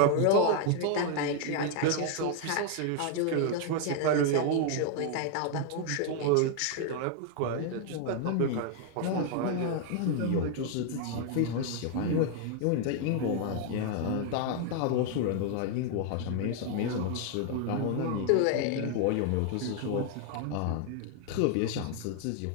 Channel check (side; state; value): both; different; correlation 0.00